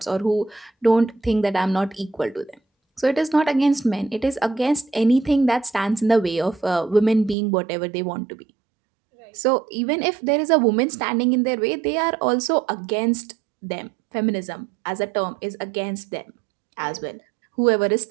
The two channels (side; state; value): left; drops out; at 7.4 s